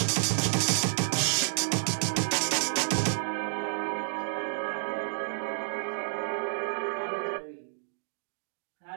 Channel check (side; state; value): left; silent; digital silence